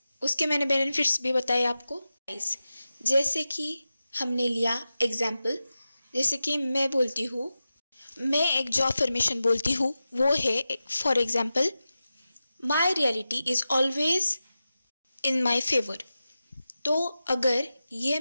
उसके मैंने बेनिफिट्स भी बताए आपको। गाइस, जैसे कि हमने लिया एग्जाम्पल, जैसे कि मैं बोलती हूँ, मैं एक जो अफर्मेशन बोलती हूँ वो है for example, my reality is always in my favour. तो अगर ये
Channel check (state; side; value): inverted; both; correlation -0.93